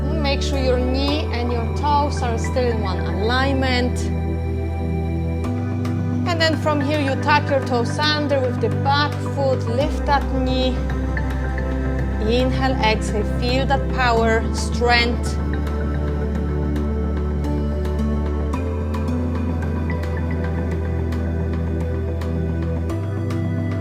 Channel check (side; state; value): both; identical; correlation 1.00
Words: Make sure your knee and your toes are still in one alignment. And then from here you tuck your toes under with the back foot, lift that knee. Inhale, exhale, feel that power, strength.